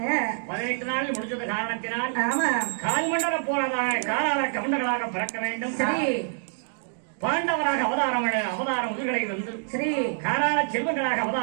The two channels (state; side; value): silent; left; digital silence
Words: 18 நாளில் முடிஞ்சது காரணத்தினால் கால்மண்டல போறதாக காலால கவுண்டர்களாக பிறக்க வேண்டும். பாண்டவராக அவதாரம் உயிர்களை வந்து காராள செல்வங்களாக